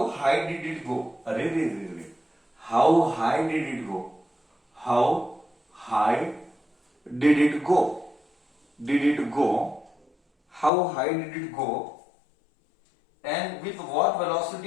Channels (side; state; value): right; drops out; at 10.7 s